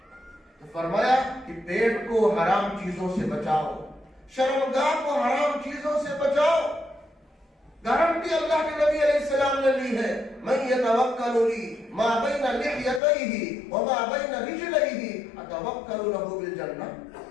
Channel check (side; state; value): right; drops out; at 13.0 s